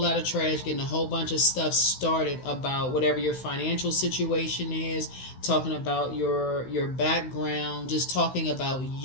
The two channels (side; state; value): right; late; 16 ms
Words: lot of trash, getting a whole bunch of stuff started about whatever your financial situation is, talking about your background, just talking about